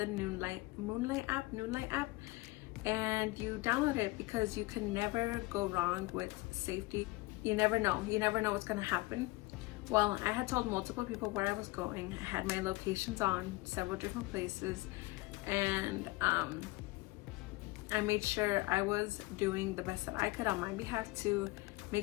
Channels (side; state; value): right; quieter; 21.6 dB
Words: Noonlight app, and you download it, because you can never go wrong with safety. You never know what's gonna happen. Well, I had told multiple people where I was going. I had my locations on several different places, and I made sure I was doing the best that I could on my behalf to make